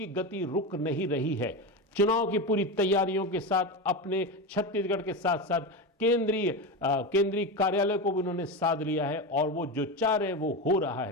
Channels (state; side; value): normal; both; correlation 0.19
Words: गति रुक नहीं रही है। चुनाव की पूरी तैयारियों के साथ अपने छत्तीसगढ़ के साथ साथ केंद्रीय कार्यालय को भी उन्होंने साध लिया है और वो जो चाह रहे वो हो रहा